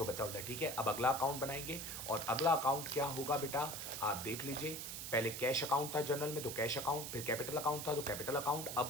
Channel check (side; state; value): right; noise; hiss, 6 dB below the sound